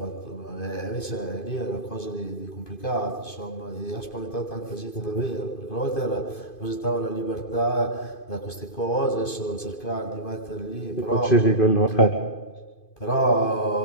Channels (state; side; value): late; right; 2.5 ms